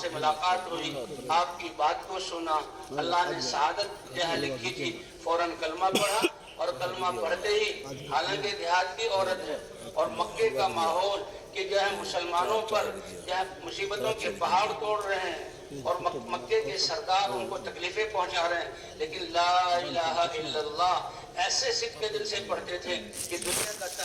سے ملاقات ہوئی، آپ کی بات کو سنا، اللہ نے سعادت جہاں لکھی تھی، فوراً کلمہ پڑھا. اور کلمہ پڑھتے ہی حالانکہ دیہات کی عورت ہے اور مکے کا ماحول کہ جو ہے مسلمانوں پر جو ہے مصیبتوں کے پہاڑ توڑ رہے ہیں اور مکے کے سردار ان کو تکلیفیں پہنچا رہے ہیں، لیکن لا الہ الا اللہ ایسے صدق کے دل سے پڑھتے تھے کہ دنیا کا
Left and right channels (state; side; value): identical; both; correlation 1.00